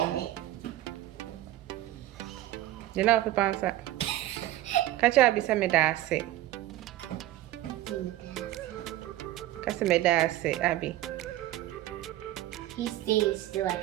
it. You know pepa nsa. Kacha bi se me da ase. Kasi me da ase abi. He stays still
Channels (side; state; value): left; quieter; 15.0 dB